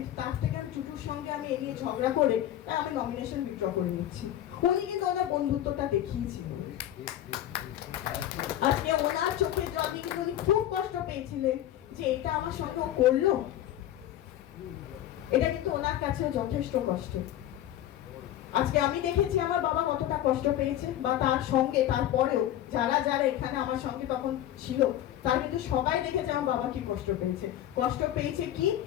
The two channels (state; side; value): quieter; right; 12.4 dB